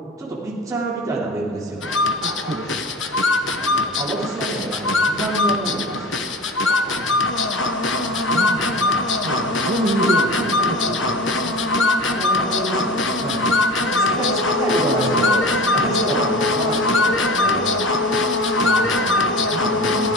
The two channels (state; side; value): normal; both; correlation 0.35